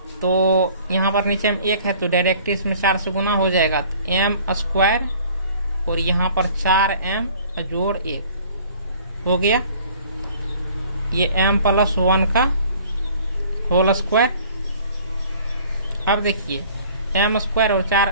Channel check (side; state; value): both; inverted; correlation -0.52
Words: तो यहाँ पर नीचे में 1 है तो डायरेक्ट इसमें 4 से गुना हो जाएगा, तो m² और यहाँ पर 4m जोड़ 1 हो गया। ये m+1 का होल स्क्वायर। अब देखिए m² और